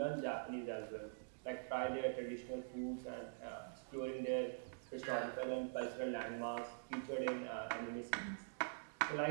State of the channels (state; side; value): silent; left; digital silence